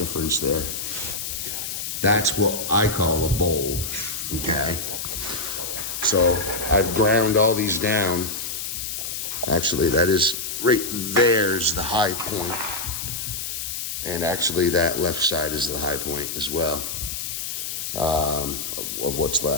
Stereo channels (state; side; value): noise; left; hiss, 5 dB below the sound